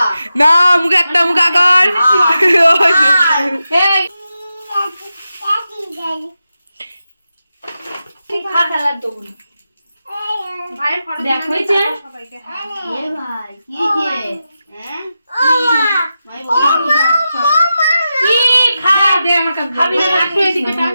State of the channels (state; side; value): inverted; both; correlation -0.90